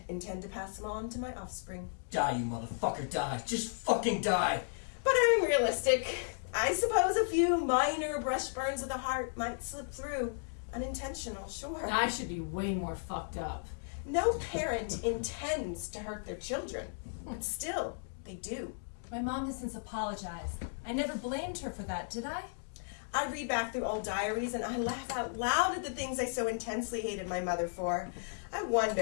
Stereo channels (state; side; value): silent; right; digital silence